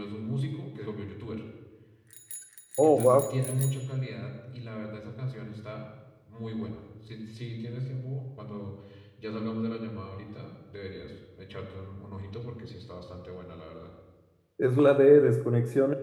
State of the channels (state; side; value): identical; both; correlation 1.00